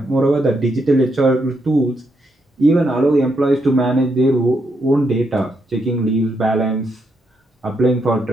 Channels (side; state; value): both; normal; correlation 0.79